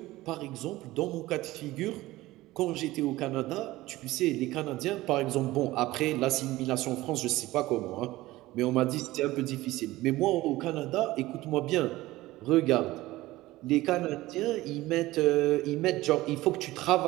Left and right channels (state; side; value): quieter; left; 17.9 dB